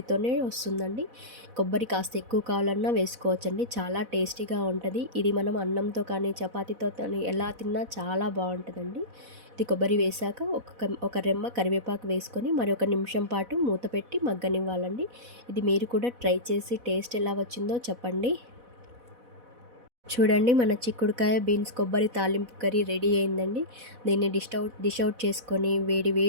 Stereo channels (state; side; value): late; left; 4.1 ms